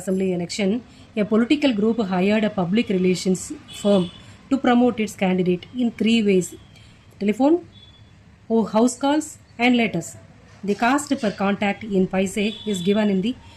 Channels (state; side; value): identical; both; correlation 1.00